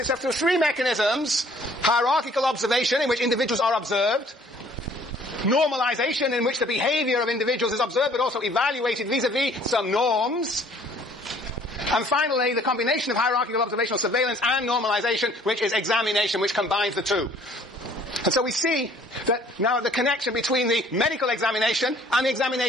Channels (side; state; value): both; normal; correlation 0.57